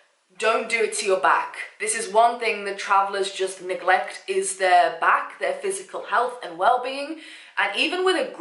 don't do it to your back. This is one thing that travelers just neglect, is their back, their physical health and well-being. And even with a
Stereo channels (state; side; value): identical; both; correlation 1.00